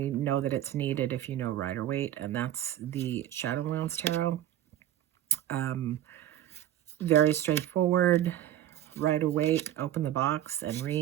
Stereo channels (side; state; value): left; quieter; 12.1 dB